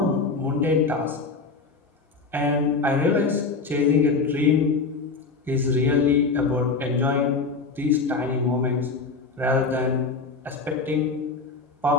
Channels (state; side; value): quieter; right; 4.3 dB